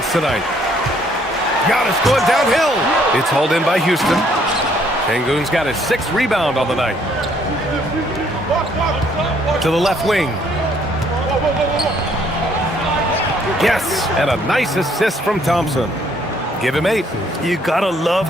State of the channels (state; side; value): normal; both; correlation 0.65